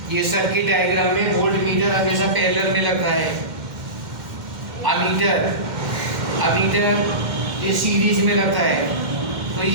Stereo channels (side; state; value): left; late; 2.1 ms